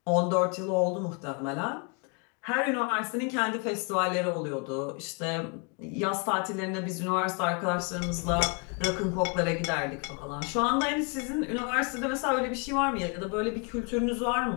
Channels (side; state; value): right; quieter; 34.6 dB